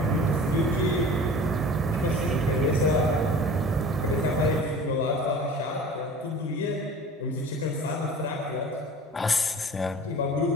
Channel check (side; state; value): both; normal; correlation 0.41